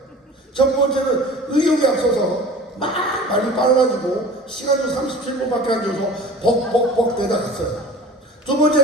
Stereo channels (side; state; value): both; normal; correlation 0.41